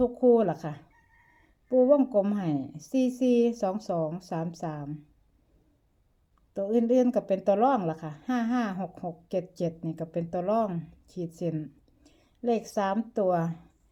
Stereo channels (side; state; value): both; identical; correlation 1.00